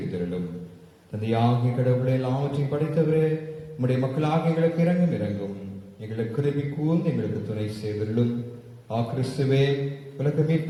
தந்தையாகிய கடவுளை எல்லாவற்றையும் படைத்தவரே, உம்முடைய மக்களாக எங்களுக்கு இறங்கும். எங்களுக்கு கிருபை கூர்ந்து எங்களுக்கு துணை செய்திருளும். கிறிஸ்துவே, உலக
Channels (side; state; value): both; identical; correlation 1.00